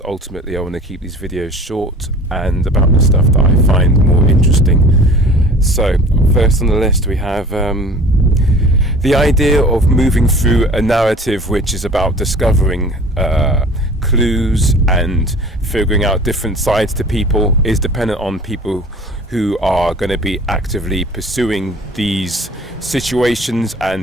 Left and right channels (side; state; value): both; normal; correlation 0.44